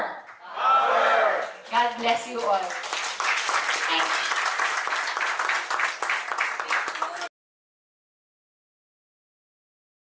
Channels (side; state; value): both; identical; correlation 1.00